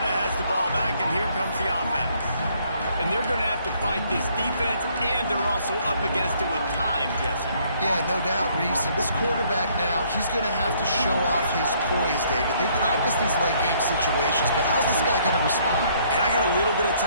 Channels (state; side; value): inverted; both; correlation -0.65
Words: has the ball back, and here comes the offense. And they're going to have to fight this defense, and they're also up against it with time, Jesse. Yeah, no doubt, Reese. And this quarterback now, he's going to have to show off his poise, David. They practice these late-game situations, but how's this guy going to respond? And I got a little bit of